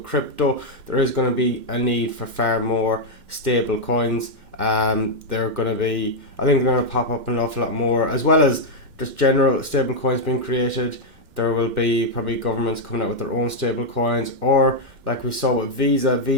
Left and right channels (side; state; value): left; late; 2.1 ms